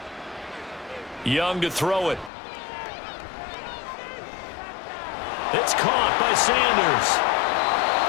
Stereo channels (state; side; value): drops out; right; at 2.3 s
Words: Young to throw it. It's caught by Sanders.